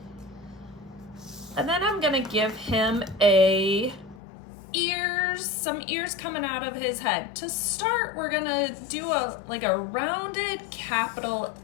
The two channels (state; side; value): drops out; right; at 4.2 s